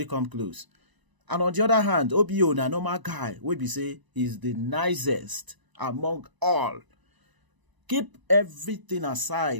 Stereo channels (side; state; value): left; late; 1.0 ms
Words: come close. And on the other hand, OBO na normal guy, we be say he's the nicest among all. Keep everything